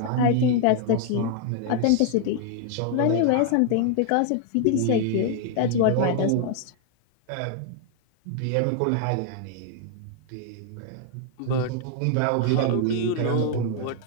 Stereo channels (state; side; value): different; both; correlation 0.00